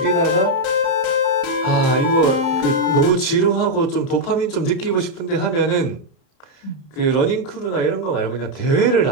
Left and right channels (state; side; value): late; right; 30 ms